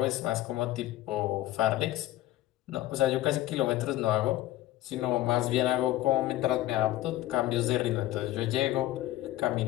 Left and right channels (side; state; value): right; quieter; 15.3 dB